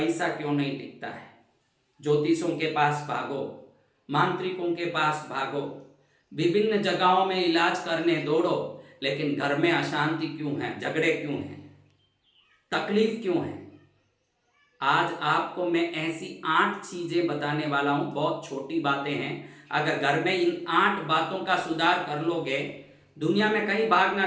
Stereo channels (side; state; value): both; identical; correlation 1.00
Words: क्यों नहीं टिकता है। ज्योतिषों के पास भागो, मांत्रिकों के पास भागो, विभिन्न जगहों में इलाज करने दौड़ो, लेकिन घर में अशांति क्यों है, झगड़े क्यों हैं, तकलीफ क्यों है। आज आपको मैं ऐसी 8 चीजें बताने वाला हूं, बहुत छोटी बातें हैं। अगर घर में इन 8 बातों का सुधार कर लोगे, दुनिया में कहीं भागना